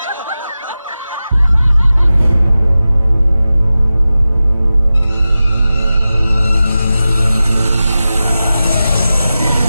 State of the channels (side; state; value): both; inverted; correlation -0.95